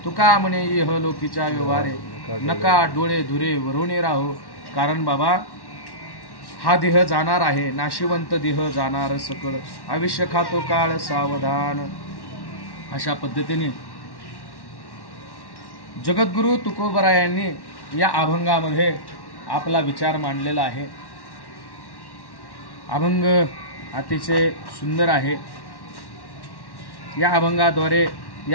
तुका म्हणे इह लोकीच्या व्यवहारे नका डोळे धुरे वरुणे राहो. कारण बाबा हा देह जाणार आहे, नाशिवंत देह जाणार सकळ, आयुष्य खातो काळ सावधान. अशा पद्धतीने जगद्गुरु तुकोबरायांनी या अभंगामध्ये आपला विचार मांडलेला आहे. अभंग अतिशय सुंदर आहे. या अभंगाद्वारे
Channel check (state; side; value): late; right; 1.1 ms